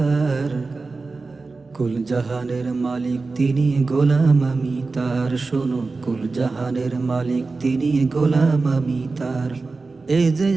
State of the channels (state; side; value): quieter; left; 3.9 dB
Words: কুল জাহানের মালিক তিনি, গোলাম আমি তার। শোনো, কুল জাহানের মালিক তিনি, গোলাম আমি তার। এই যে